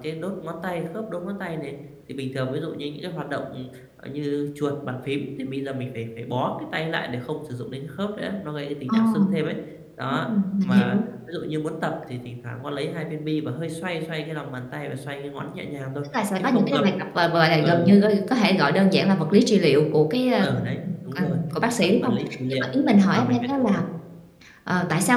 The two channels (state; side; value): identical; both; correlation 1.00